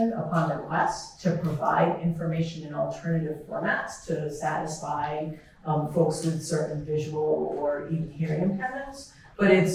upon request to provide information in alternative formats to satisfy folks with certain visual or even hearing impairments. But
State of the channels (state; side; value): identical; both; correlation 1.00